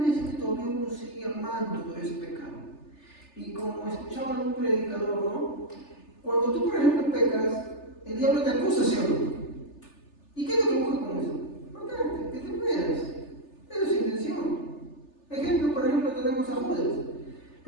es que todavía uno sigue amando todo ese pecado. Y como escuchaba un predicador, ¿no? Cuando tú, por ejemplo, pecas, el diablo te acusa, ¿sí o no? ¿Y qué es lo que busca con eso? Matarte, que te mueras. Esa es su intención. Por ejemplo, tenemos a Judas.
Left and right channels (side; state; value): right; late; 3.4 ms